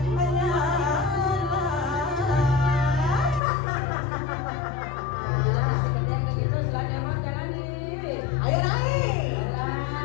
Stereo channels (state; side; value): drops out; right; at 3.4 s